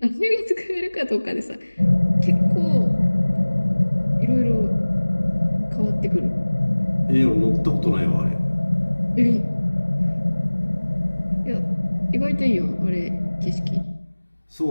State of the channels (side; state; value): both; inverted; correlation -1.00